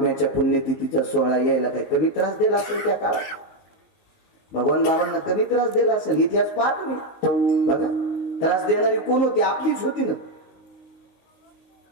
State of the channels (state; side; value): late; right; 19 ms